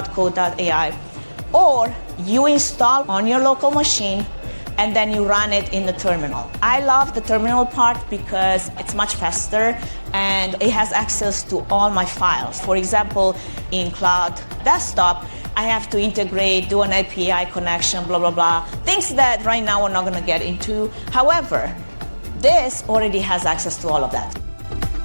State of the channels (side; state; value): both; inverted; correlation -1.00